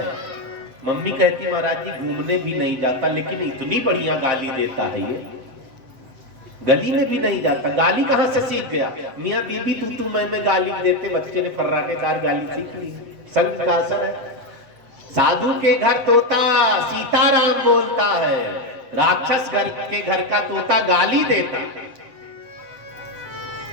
मम्मी कहती महाराज जी घूमने भी नहीं जाता, लेकिन इतनी बढ़िया गाली देता है ये, गली में भी नहीं जाता। गाली कहां से सीख गया? मियाँ बीबी तू मैं गाली देते बच्चे ने फर्राटेदार गाली सीख ली। संग का असर है। साधु के घर तोता सीताराम बोलता है, राक्षस घर के घर का तोता गाली देता।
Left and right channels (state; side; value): late; left; 7.9 ms